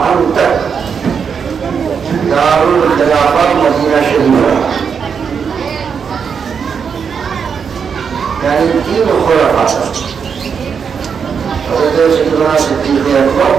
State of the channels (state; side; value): quieter; left; 6.5 dB